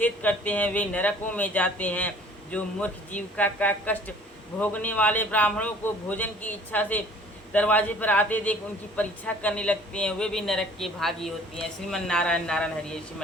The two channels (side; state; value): both; normal; correlation 0.52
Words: करते हैं, वे नरकों में जाते हैं। जो मूर्ख जीविका का कष्ट भोगने वाले ब्राह्मणों को भोजन की इच्छा से दरवाजे पर आते देख उनकी परीक्षा करने लगते हैं, वे भी नरक के भागी होती हैं। श्रीमन नारायण नारायण हरि हरि,